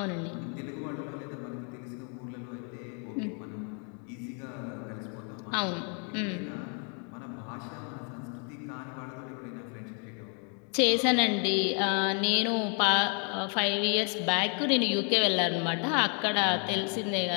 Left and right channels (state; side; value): quieter; right; 39.6 dB